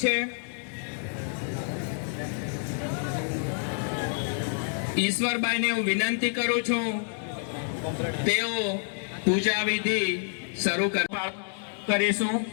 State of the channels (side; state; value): right; silent; 59 dB below the other